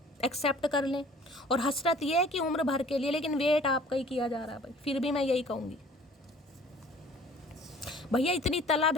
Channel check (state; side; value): normal; both; correlation 0.51